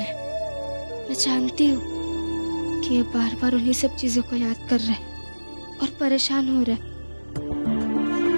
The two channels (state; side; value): inverted; both; correlation -1.00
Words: मैं जानती हूँ कि ये बार बार उन्हीं सब चीजों को याद कर रहे हैं और परेशान हो रहे हैं।